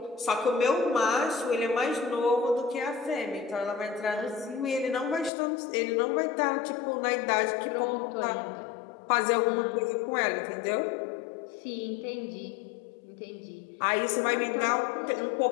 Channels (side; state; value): right; drops out; at 5.3 s